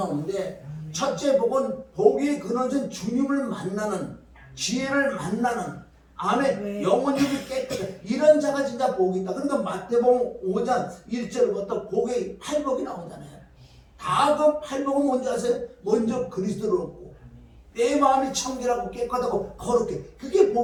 첫째 복은 복이 그너진 주님을 만나는, 지혜를 만나는, 안에 영혼이 깨끗해. 이런 자가 진짜 복이 있다. 그러니까 마태복음 5장 1절부터 복의 8복이 나오잖아요. 다 그 8복은 뭔지 아세요? 먼저 그리스도를 얻고 내 마음이 청결하고 깨끗하고 거룩해. 그게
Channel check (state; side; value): identical; both; correlation 1.00